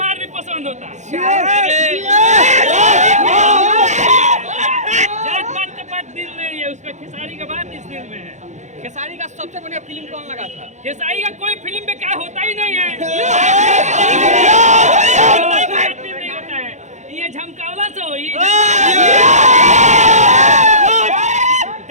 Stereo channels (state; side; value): late; left; 0.34 ms